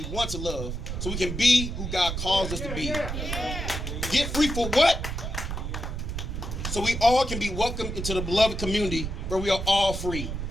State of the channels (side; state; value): right; noise; rumble, 4 dB below the sound